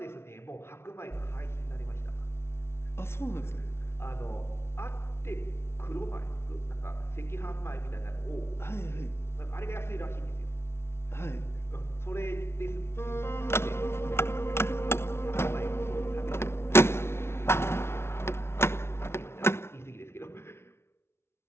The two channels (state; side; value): late; right; 0.12 ms